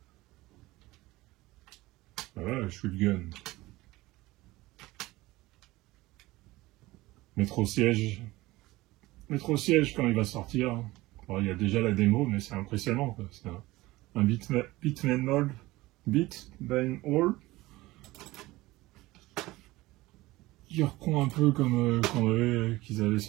Voilà, shotgun. Métro siège. Métro siège quand il va sortir. Bon, il y a déjà la démo, mais c'est impressionnant. C'est un Bitman Mall. Bitman Hall. Qui reprend un peu comme qu'ils avaient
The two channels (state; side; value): quieter; left; 19.2 dB